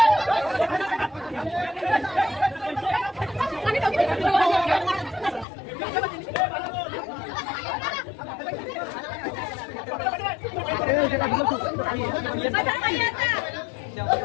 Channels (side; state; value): right; drops out; at 5.5 s